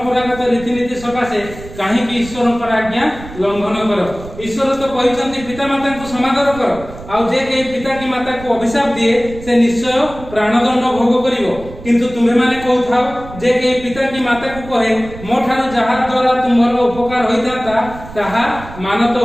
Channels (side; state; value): right; noise; rumble, 15 dB below the sound